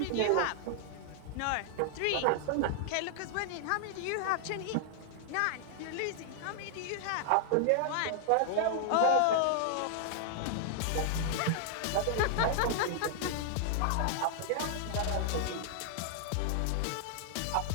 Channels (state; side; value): different; both; correlation 0.00